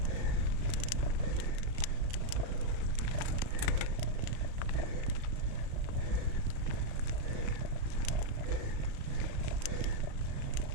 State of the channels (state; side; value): late; left; 35 ms